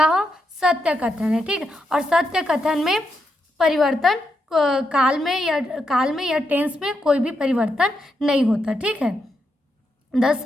सत्य कथन है। ठीक, और सत्य कथन में परिवर्तन काल में या टेंस में कोई भी परिवर्तन नहीं होता। ठीक है, the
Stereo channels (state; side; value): normal; both; correlation 0.82